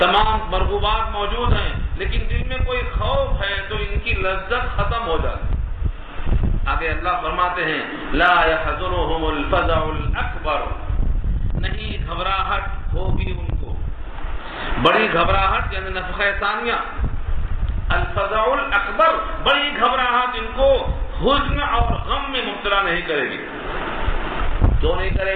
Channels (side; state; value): both; identical; correlation 1.00